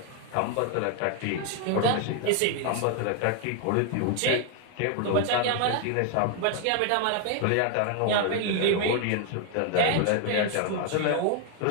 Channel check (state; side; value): different; both; correlation 0.00